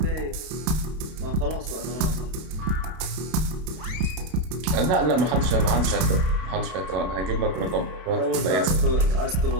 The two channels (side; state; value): left; late; 32 ms